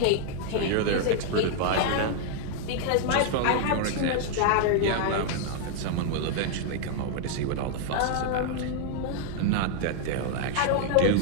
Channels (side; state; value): both; different; correlation 0.00